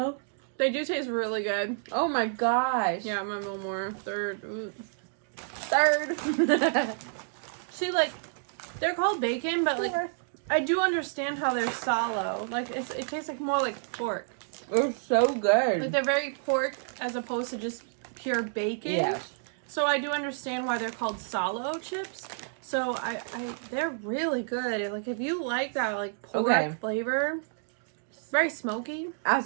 They do taste really good. Oh my gosh. Yeah, I'm gonna go more. Third. Ooh. Third. See, like, they're called bacon, but like, I do understand how they're salo. Like, it tastes like more like pork. They're so good. Like, they're very pork as opposed to just pure bacon. Yes. So I do understand why they're called salo chips. So they're really good. Like, if you like that, like, pork flavor, it's very smoky. As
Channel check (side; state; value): left; silent; digital silence